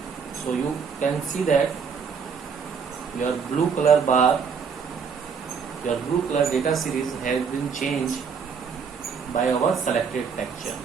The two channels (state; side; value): quieter; left; 6.2 dB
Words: so you can see that your blue color bar, your blue color data series has been changed by our selected texture.